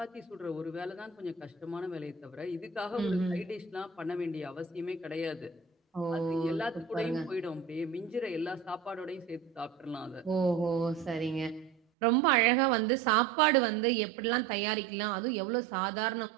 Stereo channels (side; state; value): left; drops out; at 11.8 s